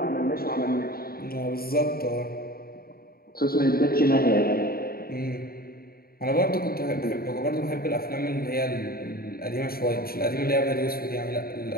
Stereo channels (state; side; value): late; right; 0.44 ms